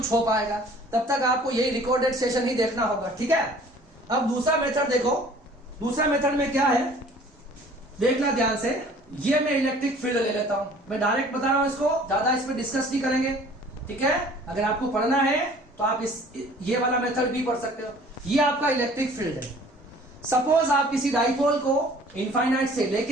हो पाएगा, तब तक आपको यही रिकॉर्डेड सेशन ही देखना होगा, ठीक है। अब दूसरा मेथड देखो, दूसरा मेथड में क्या है देखना ध्यान से। ये मैं इलेक्ट्रिक फील्ड ले लेता हूं, मैं डायरेक्ट बता रहा हूं, इसको ज्यादा इस पर डिस्कस नहीं करेंगे, ठीक है। अगर आपको पढ़ना है तो आप ये वाला मेथड भी पढ़ सकते हो। ये आपका इलेक्ट्रिक फील्ड है। सपोज आप किसी डाइपोल को इनफाइनाइट से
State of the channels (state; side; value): normal; both; correlation 0.51